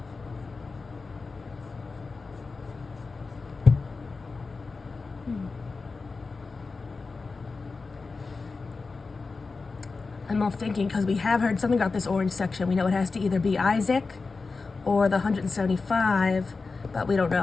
I'm all thinking, because we have heard something about this orange section. We know it has to either be Isaac or the 175, but we don't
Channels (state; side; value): quieter; right; 4.2 dB